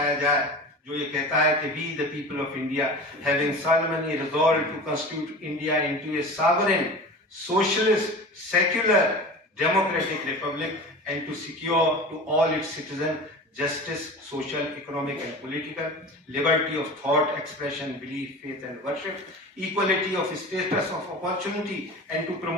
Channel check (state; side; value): normal; both; correlation 0.34